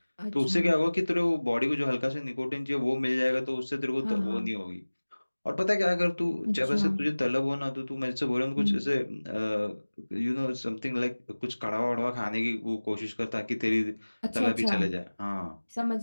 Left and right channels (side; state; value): both; inverted; correlation -1.00